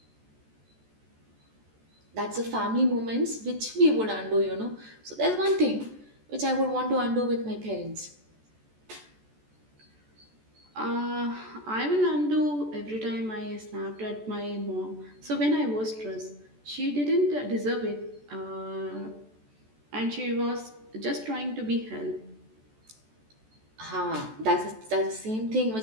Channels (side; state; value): left; late; 14 ms